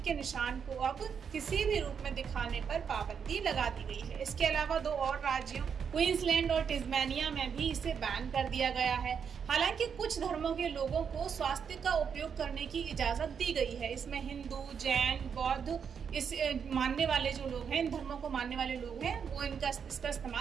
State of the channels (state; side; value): quieter; left; 7.0 dB